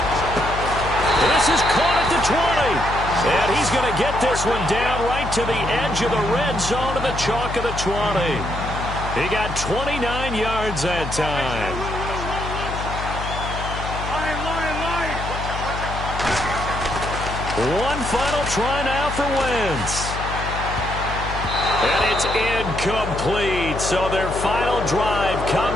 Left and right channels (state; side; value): noise; left; hum, 6 dB below the sound